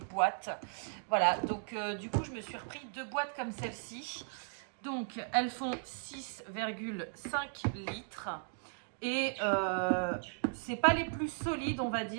Voilà, donc du coup je me suis repris 2 boîtes comme celle-ci. Donc elles font 6,5 litres. Et c'est pas les plus solides, on va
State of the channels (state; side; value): silent; left; digital silence